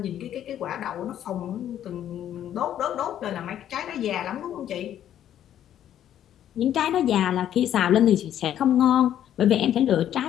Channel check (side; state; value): right; quieter; 10.8 dB